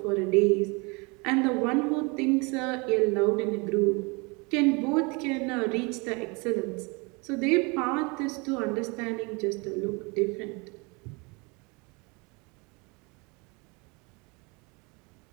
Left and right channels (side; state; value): left; quieter; 29.0 dB